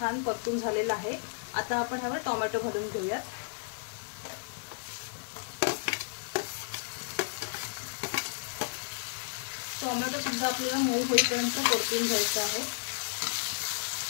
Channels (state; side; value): silent; right; digital silence